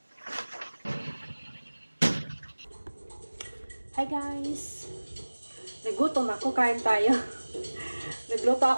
Hi guys! Nagutom ako, kain tayo. Nagluto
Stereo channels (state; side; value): inverted; both; correlation -1.00